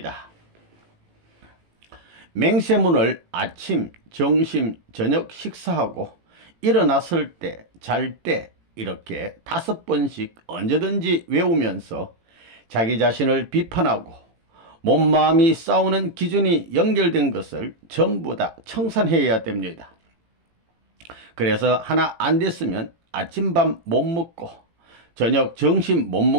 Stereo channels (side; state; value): left; late; 18 ms